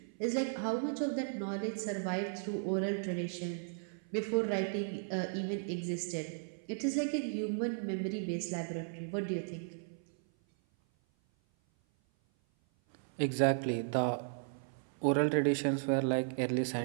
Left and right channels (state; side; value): silent; left; 54 dB below the other